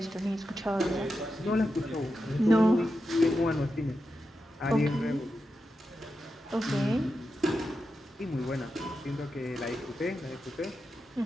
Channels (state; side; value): normal; both; correlation 0.89